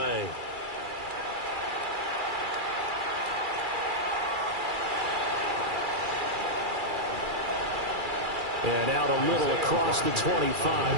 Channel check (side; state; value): left; late; 2.4 ms